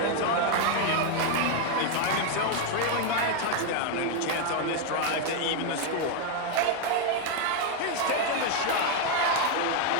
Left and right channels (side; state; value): both; different; correlation 0.01